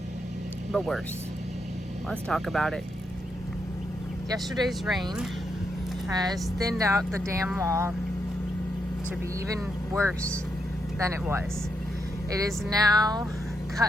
but worse. Let's talk about it. Yesterday's rain has thinned out the dam wall to be even worse than it was. It has now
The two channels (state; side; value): normal; both; correlation 0.81